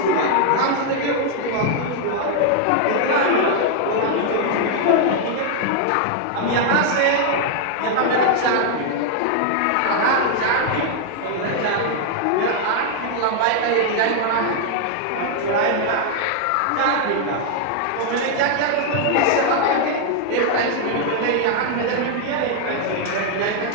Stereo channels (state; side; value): different; both; correlation 0.00